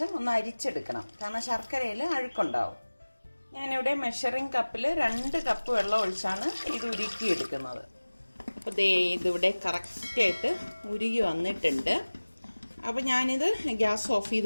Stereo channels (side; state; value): both; inverted; correlation -1.00